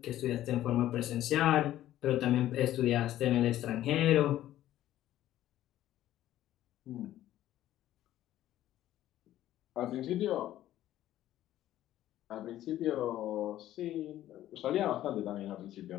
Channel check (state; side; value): quieter; right; 13.3 dB